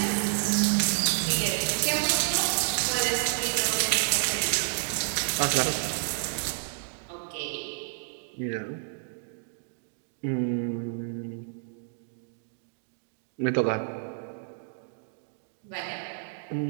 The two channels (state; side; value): silent; left; digital silence